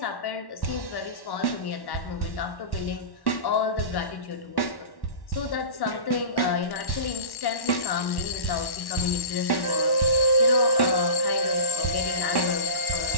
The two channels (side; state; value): right; late; 1.1 ms